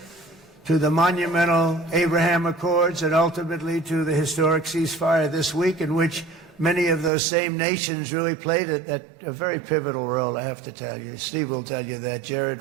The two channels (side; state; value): left; drops out; at 7.1 s